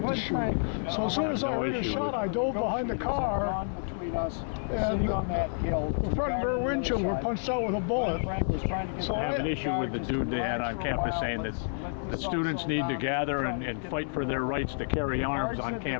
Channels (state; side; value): silent; right; 58 dB below the other